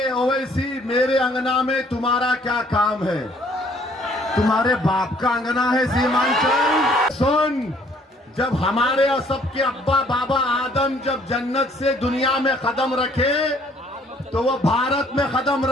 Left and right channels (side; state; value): both; normal; correlation 0.61